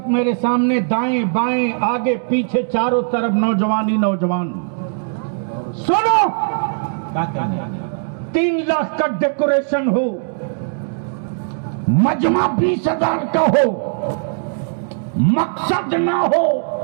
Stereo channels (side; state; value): left; silent; digital silence